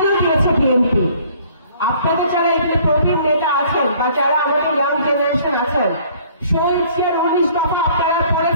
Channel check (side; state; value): both; inverted; correlation -0.57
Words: দিয়েছে বিএনপি? আপনাদের যারা এখানে প্রবীণ নেতা আছেন বা যারা আমাদের ইয়াং জেনারেশন আছেন, শহীদ জিয়ার 19 দফা আপনারা